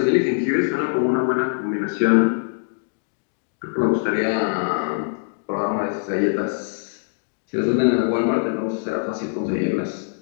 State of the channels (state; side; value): silent; right; digital silence